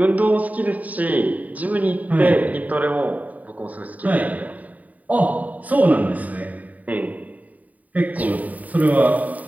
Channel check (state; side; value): late; left; 0.073 ms